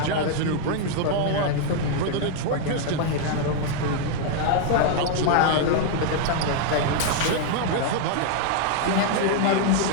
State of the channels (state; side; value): different; both; correlation 0.00